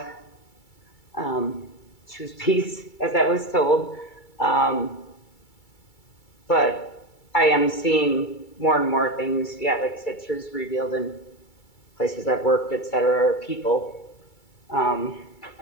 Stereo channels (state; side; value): late; right; 2.3 ms